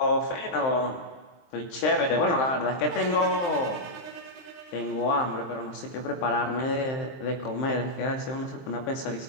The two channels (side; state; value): right; late; 23 ms